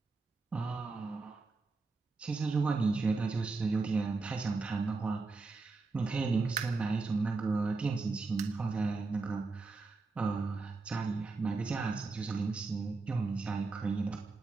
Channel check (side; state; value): left; quieter; 3.9 dB